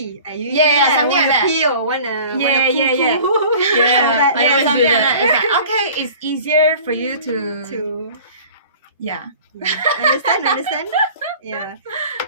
I usually something like that. Pee or wanna something like that. It's like, okay, it's easier for you to understand. Yeah.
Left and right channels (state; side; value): inverted; both; correlation -0.44